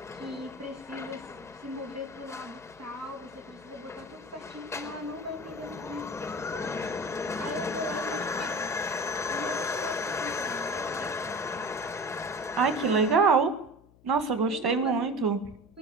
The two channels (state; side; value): noise; left; hum, 26 dB below the sound